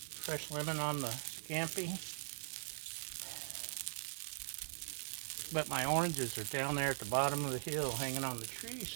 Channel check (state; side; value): silent; left; digital silence